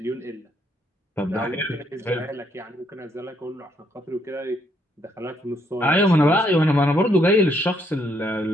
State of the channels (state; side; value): normal; both; correlation 0.72